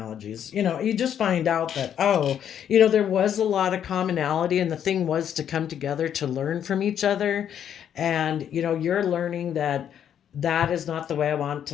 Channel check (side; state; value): right; quieter; 9.3 dB